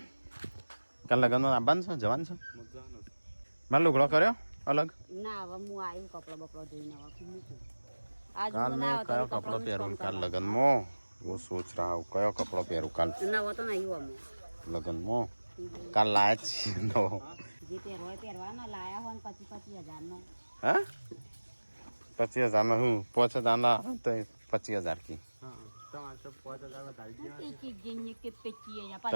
કાલ લગ્નમાં આવવાનું છે જવાનું છે? મારે લુગડો કર્યો અલગ? ના હવે હું આવ્યું કપડો બપડો ધોઈને હવે મૂકું કાલ મેં કયો કપડો પહેરું કાલ લગ્નમાં? હું સોચ રહા હું કયો કપડો પહેરું કાલ નવો તો નહીં અમે લગ્નમાં. કાલ લાયા જ છીએ નવો. જે પહેરવા પહેરવાનો લાયા હોય ને 25,000 હા 25,000 નો હું 5,000 ના તો 25,000 કી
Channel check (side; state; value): both; inverted; correlation -1.00